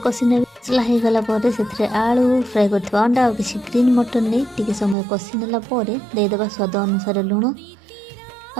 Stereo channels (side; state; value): left; drops out; at 5.0 s